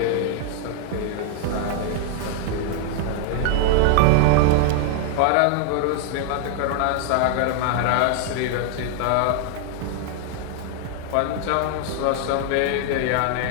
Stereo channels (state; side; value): different; both; correlation 0.00